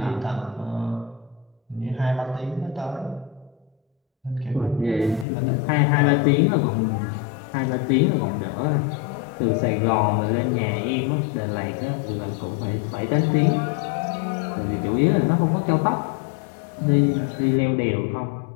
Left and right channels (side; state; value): right; drops out; at 5.2 s